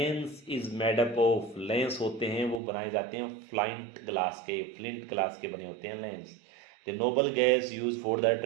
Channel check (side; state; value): left; drops out; at 2.6 s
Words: is made up of. Lens होते हैं वो बनाए जाते हैं फ्लिंट ग्लास के बने होते हैं lens. The noble gas use for the